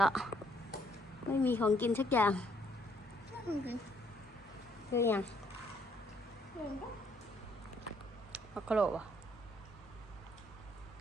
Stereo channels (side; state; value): both; normal; correlation 0.67